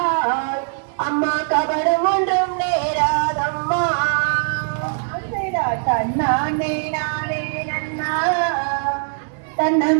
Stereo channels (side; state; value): left; silent; 65 dB below the other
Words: அம்மா கபடம் ஒன்றும் நேராதம்மா தன்னானே நானே நன்னா